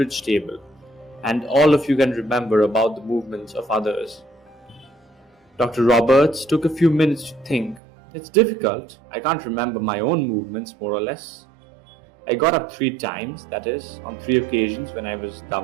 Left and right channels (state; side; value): drops out; left; at 7.8 s